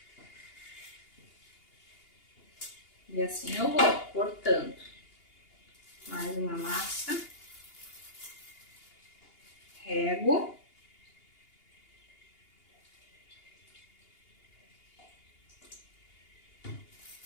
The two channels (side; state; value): right; late; 2.8 ms